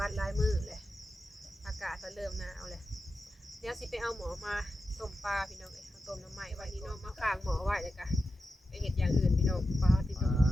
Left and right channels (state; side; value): normal; both; correlation 0.91